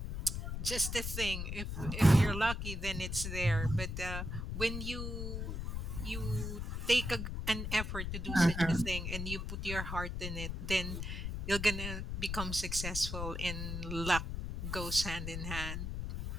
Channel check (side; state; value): left; noise; rumble, 4 dB below the sound